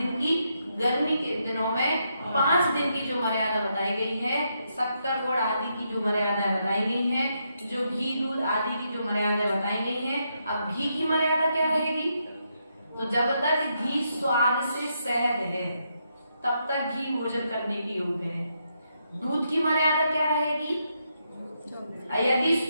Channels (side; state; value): both; inverted; correlation -0.80